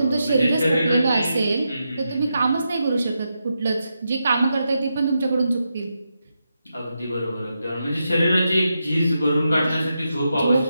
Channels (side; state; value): both; inverted; correlation -0.86